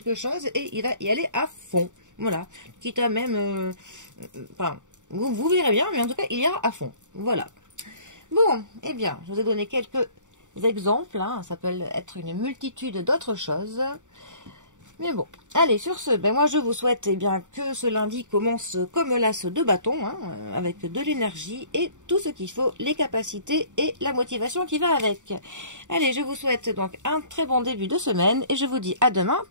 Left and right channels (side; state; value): left; late; 0.86 ms